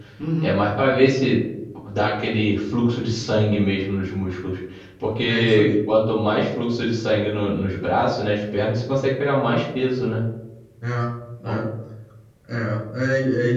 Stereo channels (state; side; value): identical; both; correlation 1.00